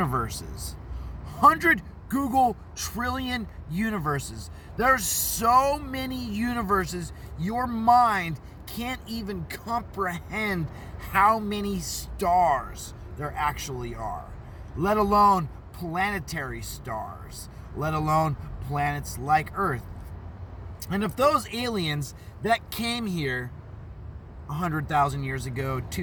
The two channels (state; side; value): identical; both; correlation 1.00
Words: 100 Google trillion universes. There's so many universes, your mind can't even comprehend how many stars there actually are, let alone planetary stars, let alone planets like Earth. And if those aliens that came here 100,000 years ago,